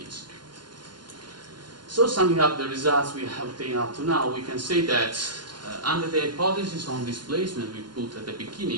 So summing up the results we have obtained up to now, we can say that under the hypothesis on displacement we put at the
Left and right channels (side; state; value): left; late; 0.71 ms